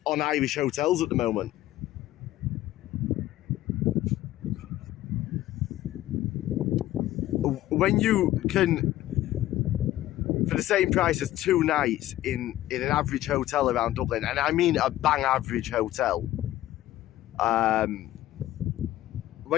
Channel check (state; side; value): quieter; right; 14.5 dB